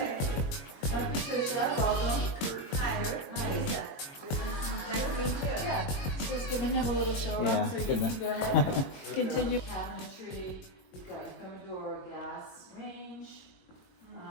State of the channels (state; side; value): late; right; 22 ms